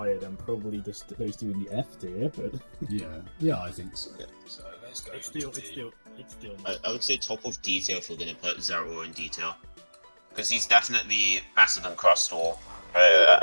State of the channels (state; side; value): inverted; both; correlation -1.00